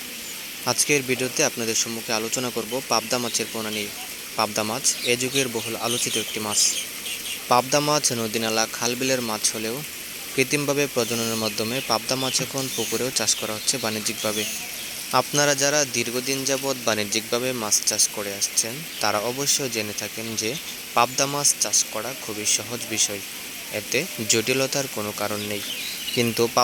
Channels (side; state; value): both; identical; correlation 1.00